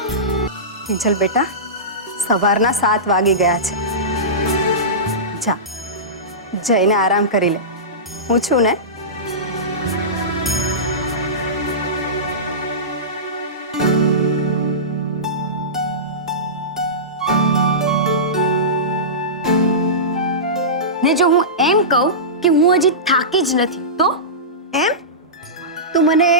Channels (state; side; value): normal; both; correlation -0.19